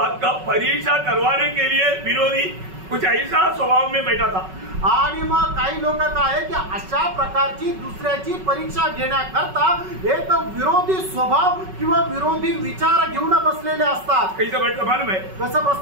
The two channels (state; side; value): late; left; 5.3 ms